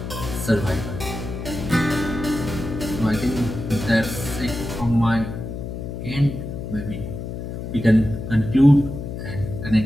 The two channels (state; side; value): noise; left; hum, 7 dB below the sound